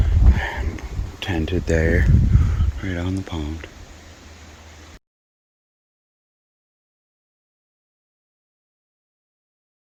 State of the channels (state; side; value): identical; both; correlation 1.00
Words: Tented there, right on the pond.